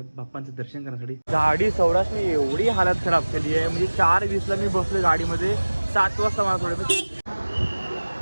बाप्पांचं दर्शन करण्यासाठी. गाडी सौराष्ट्रने एवढी हालत खराब केली आहे, म्हणजे 4:20ला मी बसलोय गाडीमध्ये, 7 वाजता मला थोडं.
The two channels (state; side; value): inverted; both; correlation -1.00